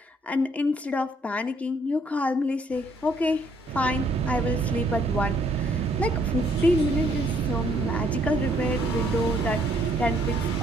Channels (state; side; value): normal; both; correlation 0.67